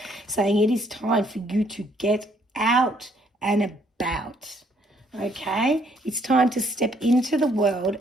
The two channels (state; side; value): normal; both; correlation 0.67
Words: saying it is time for you to get out and about. Okay, it's time to step into the world